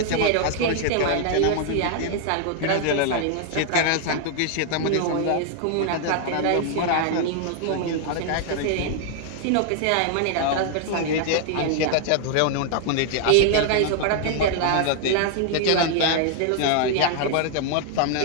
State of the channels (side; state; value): both; different; correlation 0.00